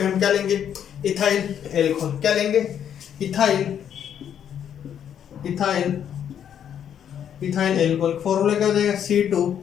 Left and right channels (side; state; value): right; quieter; 9.1 dB